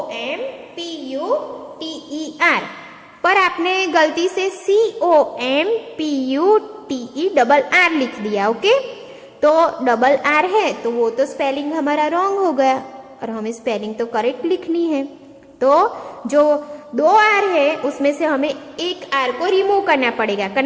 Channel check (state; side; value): identical; both; correlation 1.00